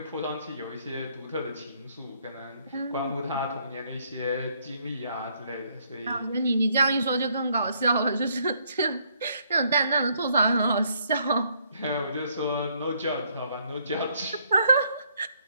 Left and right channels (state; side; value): inverted; both; correlation -0.70